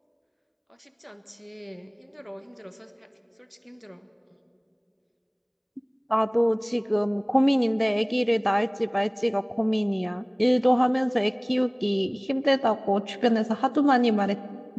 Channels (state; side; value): identical; both; correlation 1.00